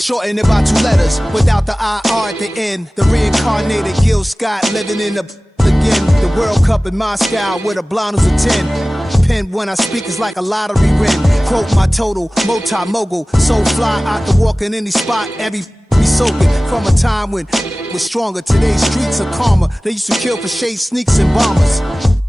it by 2 letters. Without the IR at the end, the reincarnated Gil Scott living in the again. The World Cup in Moscow with a blonde who's a 10. Pen when I speak is like a lottery win. Quote my total, multi-mogul. So fly out to walk in any spot, every be soaking from a time when was stronger. Today's streets are calmer. They used to kill for shade sneaks and bombers.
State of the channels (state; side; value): normal; both; correlation 0.98